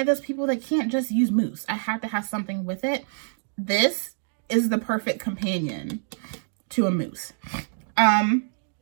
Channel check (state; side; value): silent; left; digital silence